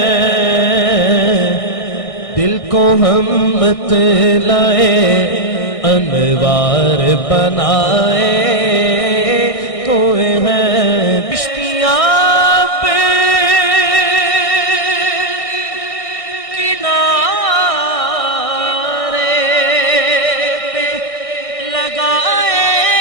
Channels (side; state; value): right; late; 1.6 ms